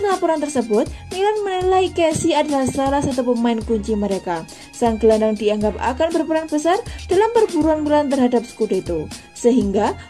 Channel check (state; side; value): identical; both; correlation 1.00